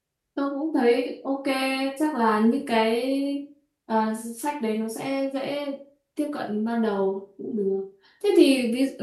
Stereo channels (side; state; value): both; identical; correlation 1.00